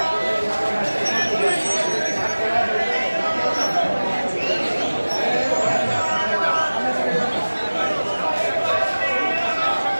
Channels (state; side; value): inverted; both; correlation -1.00